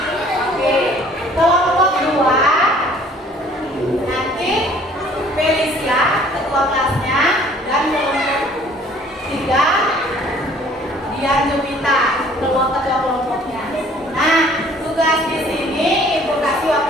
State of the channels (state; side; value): normal; both; correlation 0.55